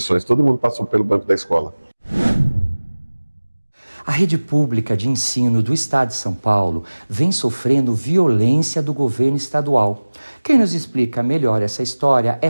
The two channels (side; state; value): both; inverted; correlation -1.00